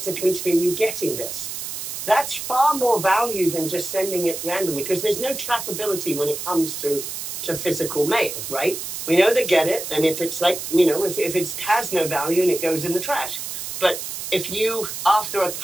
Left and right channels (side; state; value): right; noise; hiss, 6 dB below the sound